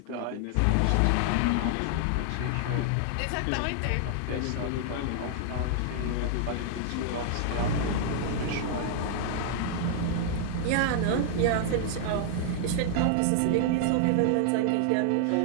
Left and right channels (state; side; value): different; both; correlation -0.01